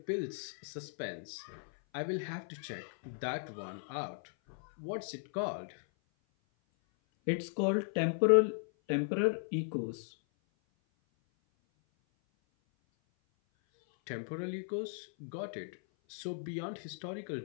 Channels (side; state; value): right; silent; 53 dB below the other